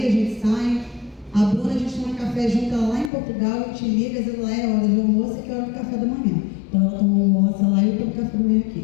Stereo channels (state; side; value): drops out; right; at 3.1 s